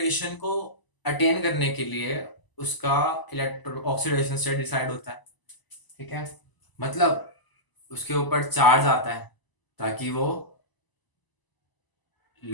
को अटेन करने के लिए उसका इलेक्ट्रो ऑक्सीडेशन स्टेट डिसाइड होता है। ठीक है, मतलब उसके ऊपर चार्ज आता है ताकि वो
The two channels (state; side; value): late; right; 1.0 ms